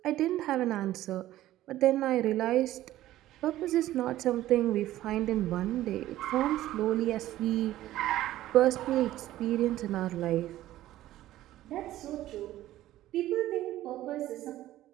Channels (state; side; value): quieter; left; 14.5 dB